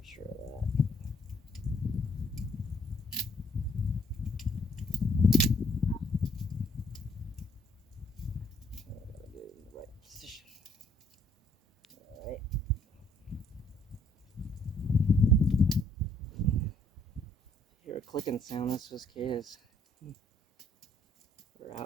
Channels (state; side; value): normal; both; correlation 0.66